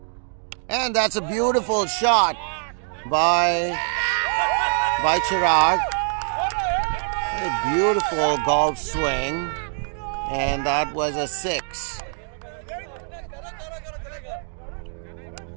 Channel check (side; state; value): left; silent; 63 dB below the other